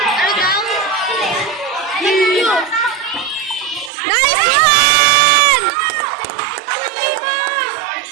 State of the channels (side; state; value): left; drops out; at 3.9 s